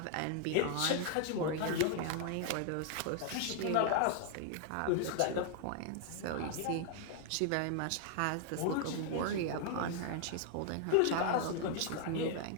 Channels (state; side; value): different; both; correlation 0.00